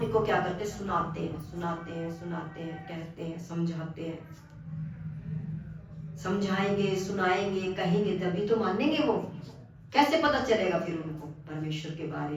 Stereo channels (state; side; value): identical; both; correlation 1.00